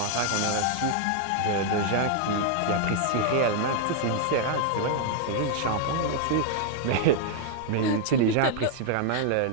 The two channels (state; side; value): different; both; correlation 0.00